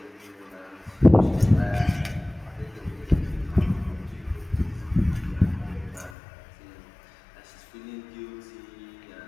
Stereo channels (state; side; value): drops out; right; at 6.1 s